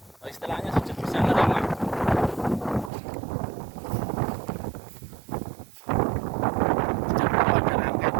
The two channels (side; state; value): left; drops out; at 2.9 s